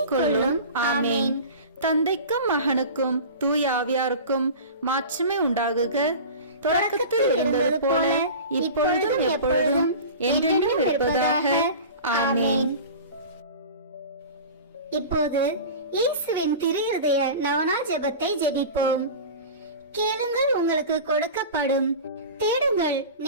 கொள்ளும். ஆமேன். தந்தைக்கும் மகனுக்கும் தூய ஆவியாருக்கும் மாட்சிமை உண்டாகுக. தொடக்கத்தில் இருந்தது போல இப்பொழுதும் எப்பொழுதும் என்றென்றும் இருப்பதாக. ஆமேன். இப்போது இயேசுவின் திரு இருதய நவனா ஜெபத்தை ஜெபிப்போம். கேளுங்கள், உங்களுக்கு கொடுக்கப்படும். தேடுங்கள்,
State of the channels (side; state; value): both; inverted; correlation -0.34